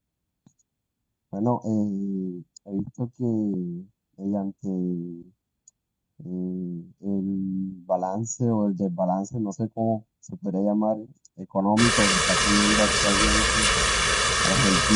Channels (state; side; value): identical; both; correlation 1.00